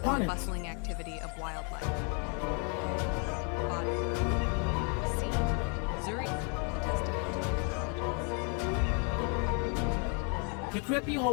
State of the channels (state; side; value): quieter; right; 37.8 dB